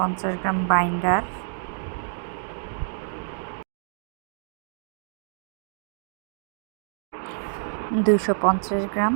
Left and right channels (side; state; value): left; silent; digital silence